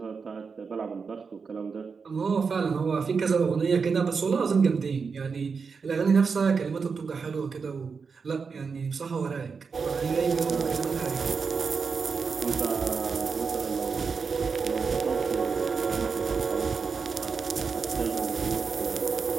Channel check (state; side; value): quieter; left; 5.3 dB